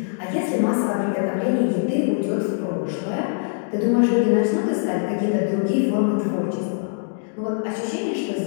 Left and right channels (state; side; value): silent; right; digital silence